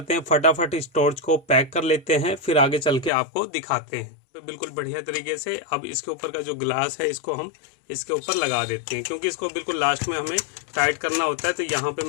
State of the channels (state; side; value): drops out; right; at 3.1 s